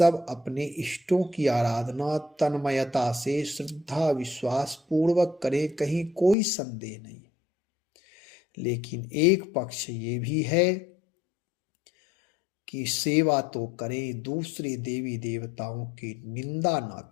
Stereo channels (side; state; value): right; drops out; at 6.4 s